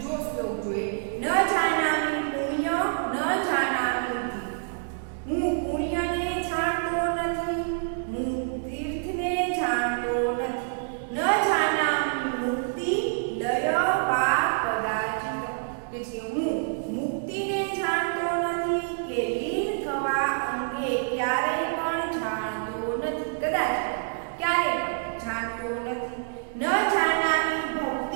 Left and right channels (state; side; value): silent; left; digital silence